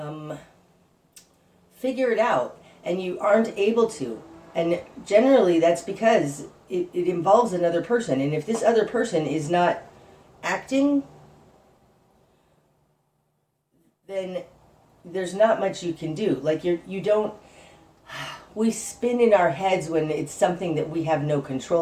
figure it out, and you aren't able to. And generally that's because it involves another person. And if this other person is not acting, then there's not much you can do. Like you don't, we spin in our heads when it's something that we have no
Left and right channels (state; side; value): identical; both; correlation 1.00